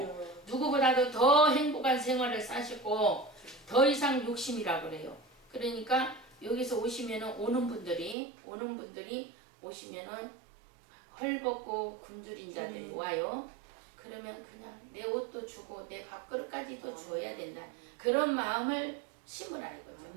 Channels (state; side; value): drops out; left; at 8.2 s